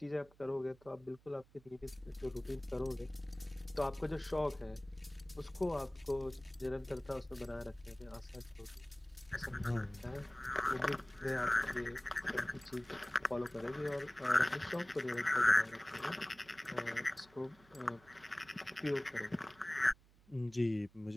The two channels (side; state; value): right; noise; hum, 27 dB below the sound